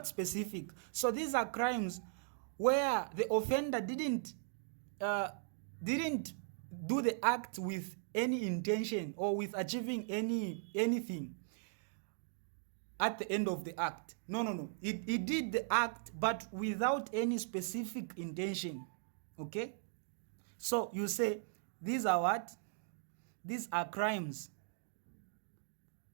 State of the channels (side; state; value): left; silent; digital silence